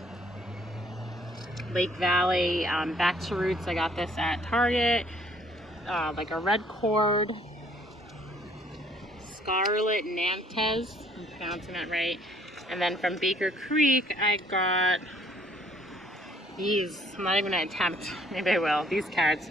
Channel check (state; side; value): normal; both; correlation 0.62